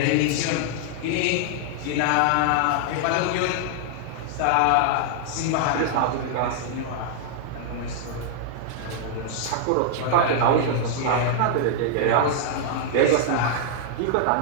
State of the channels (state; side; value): different; both; correlation -0.01